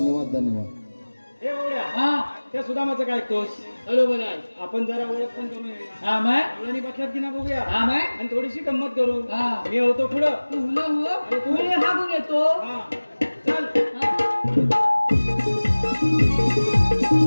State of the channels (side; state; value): both; inverted; correlation -1.00